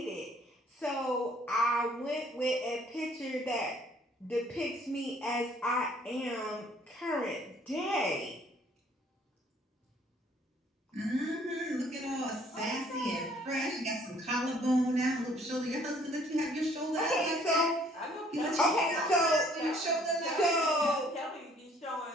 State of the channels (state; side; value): normal; both; correlation 0.60